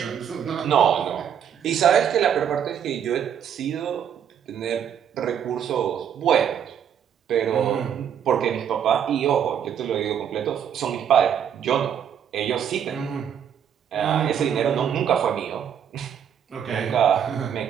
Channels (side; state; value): left; quieter; 8.7 dB